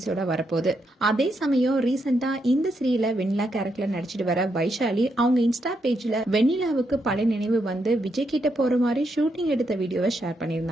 வரப்போகுது. அதே சமயம் ரீசெண்டா இந்த சீரியல்ல வெண்ணிலா கேரக்டர்ல நடிச்சிட்டு வர வைஷாலி அவங்க இன்ஸ்டா பேஜ்ல வெண்ணிலாவுக்கு பழைய நினைவு விஜய் கிட்ட போற மாதிரி ஷூட்டிங் எடுத்த வீடியோவை ஷேர்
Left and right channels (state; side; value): normal; both; correlation 0.80